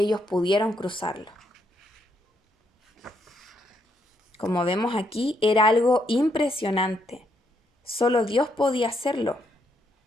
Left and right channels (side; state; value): both; normal; correlation 0.76